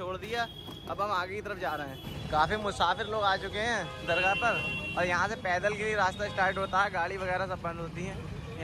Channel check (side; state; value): both; identical; correlation 1.00